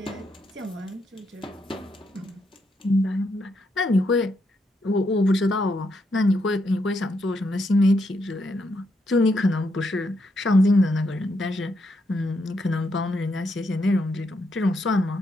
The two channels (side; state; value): both; normal; correlation 0.79